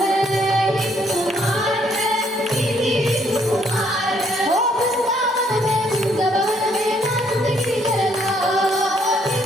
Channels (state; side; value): normal; both; correlation 0.68